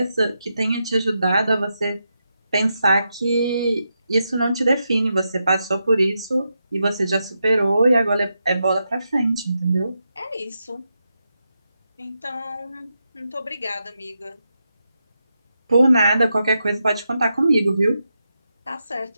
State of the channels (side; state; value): both; inverted; correlation -0.86